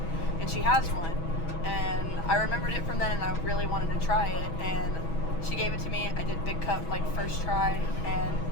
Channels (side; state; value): right; late; 6.2 ms